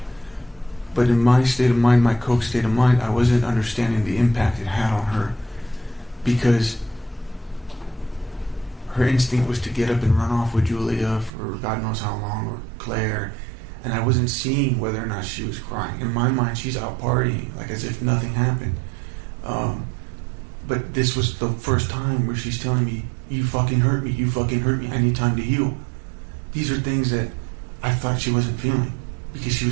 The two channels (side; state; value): left; drops out; at 11.3 s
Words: But in my state of mind, my coke state of mind, I wasn't understanding the impact it had on her. Because her instinct was to get up and run off with Julia for God knows how long, or Claire. And I wasn't seeing whether or not she was crying. In my mind, she's out partying, like as if nothing happened. But this was the first time where she's telling me, you fucking hurt me, I need time to heal. These are things that I thought she wasn't feeling, because she